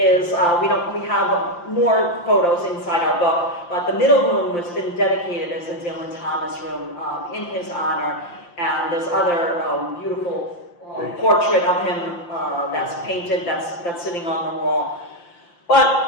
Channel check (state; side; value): late; right; 5.8 ms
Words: we have more photos inside our book, but the middle room has been dedicated as a Dylan Thomas room in his honor, and there's other beautiful portrait of him that's painted, that's sitting on the wall.